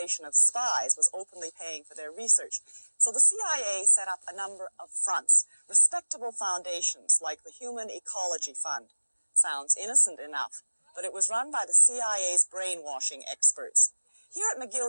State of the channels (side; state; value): both; inverted; correlation -1.00